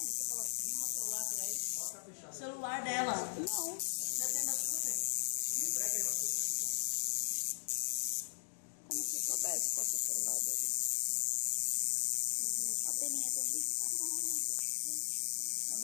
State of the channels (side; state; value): right; silent; digital silence